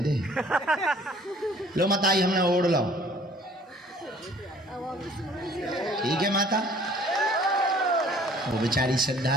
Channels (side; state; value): both; normal; correlation 0.54